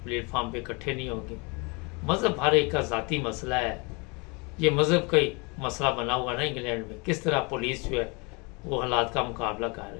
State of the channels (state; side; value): quieter; right; 29.9 dB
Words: प्लेटफार्म पे इकट्ठे नहीं होंगे, मज़हब हर एक का ज़ाती मसला है। ये मज़हब का ही मसला बना हुआ ना इंग्लैंड में, किस तरह पुलिस जो है वो हालात का मुकाबला कर